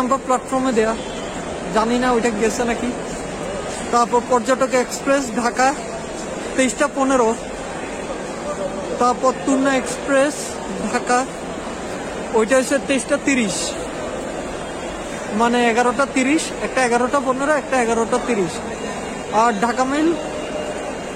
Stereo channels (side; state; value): both; identical; correlation 1.00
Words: প্ল্যাটফর্মে দেয়া, জানি না ওইটা গেছে নাকি। তারপর পর্যটক এক্সপ্রেস ঢাকা 23টা 15, তারপর তুন্না এক্সপ্রেস ঢাকা ওইটা হচ্ছে 23টা 30, মানে 11টা 30, একটা 11টা 15, একটা 11টা 30। আর ঢাকা মেল